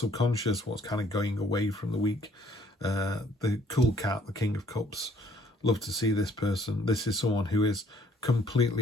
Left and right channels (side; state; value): both; normal; correlation 0.61